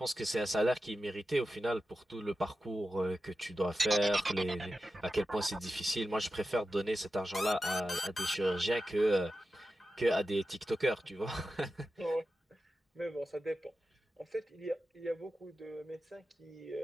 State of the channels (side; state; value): both; normal; correlation 0.92